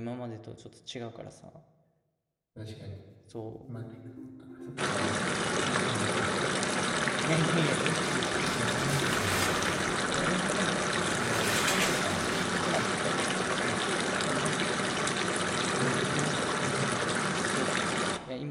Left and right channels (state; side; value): identical; both; correlation 1.00